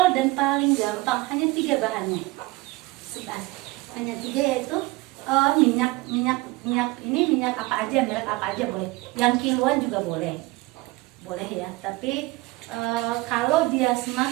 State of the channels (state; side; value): quieter; left; 21.8 dB